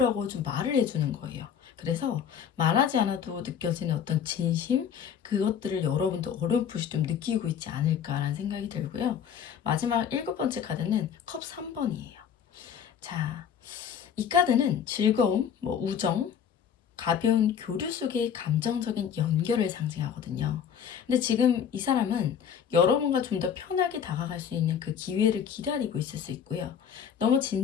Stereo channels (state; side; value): quieter; right; 8.1 dB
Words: 좀 말을 해주는 거예요. 그래서 말하지 않아도 느껴지는 어떤 진심, 그것들을 여러분도 어렴풋이 좀 느끼고 있지 않을까라는 생각이 들고요. 마지막 일곱 번째 카드는 컵 3번이에요. 자, 이 카드는 즐거움, 우정, 가벼운 교류 속의 감정적인 연결을 상징하거든요. 근데 지금 이 사람은 여러분과 좀 더 편하게 다가갈 수 있는 그 기회를 기다리고 있을 수 있고요. 너무